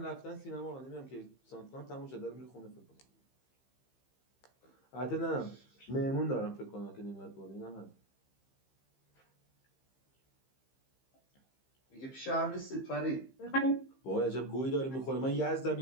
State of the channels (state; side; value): late; right; 15 ms